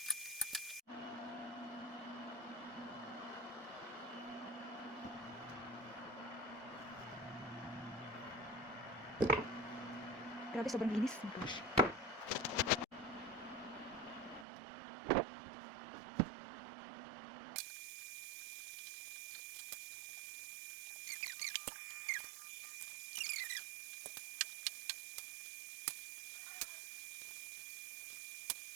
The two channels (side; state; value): left; drops out; at 14.5 s